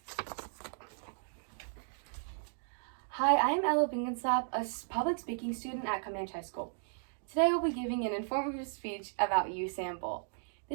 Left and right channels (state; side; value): silent; left; digital silence